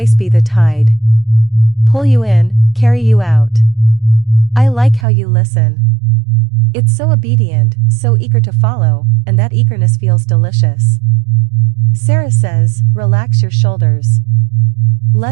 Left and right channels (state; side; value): drops out; left; at 5.1 s